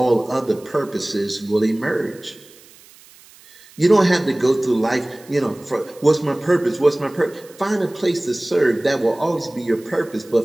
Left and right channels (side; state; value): right; noise; hiss, 24 dB below the sound